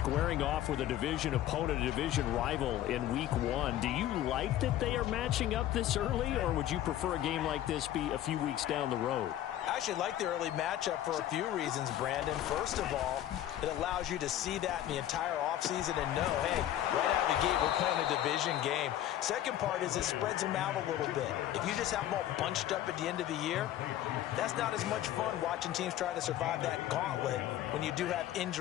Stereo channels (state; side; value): quieter; right; 12.5 dB